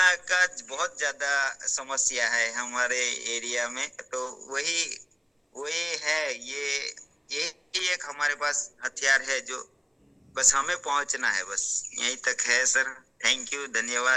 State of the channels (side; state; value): both; identical; correlation 1.00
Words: का बहुत ज्यादा समस्या है हमारे एरिया में, तो वही वही है, यही एक हमारे पास हथियार है जो बस हमें पहुंचना है, बस यहीं तक है सर। थैंक यू,